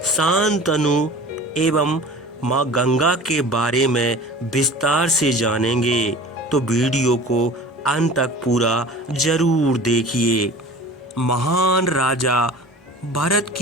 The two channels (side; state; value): both; normal; correlation 0.40